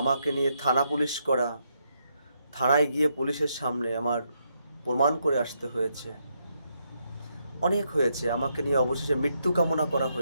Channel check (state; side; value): inverted; both; correlation -0.79